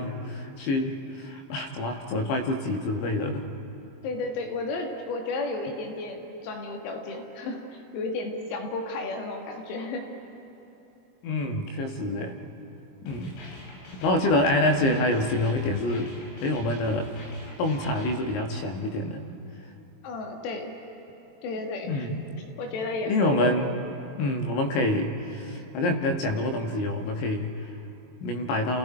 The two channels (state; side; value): late; right; 23 ms